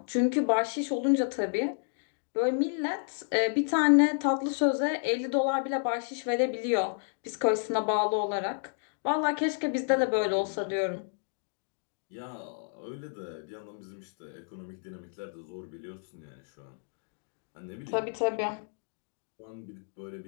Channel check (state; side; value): silent; right; digital silence